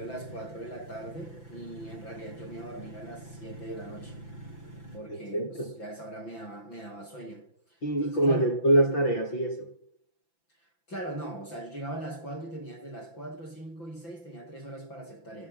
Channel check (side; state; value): right; late; 5.9 ms